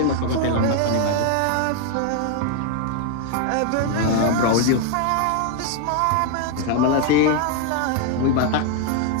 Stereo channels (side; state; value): both; different; correlation 0.01